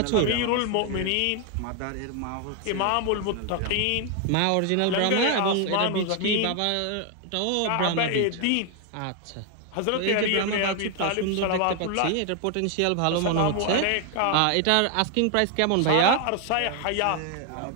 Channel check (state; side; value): different; both; correlation 0.01